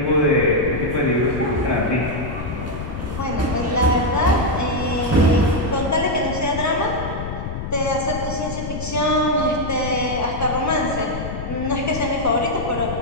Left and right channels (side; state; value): left; noise; rumble, 6 dB below the sound